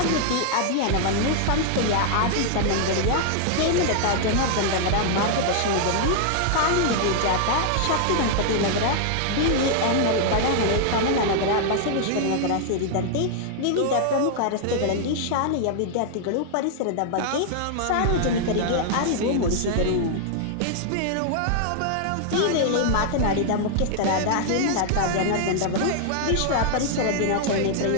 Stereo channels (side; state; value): both; different; correlation -0.01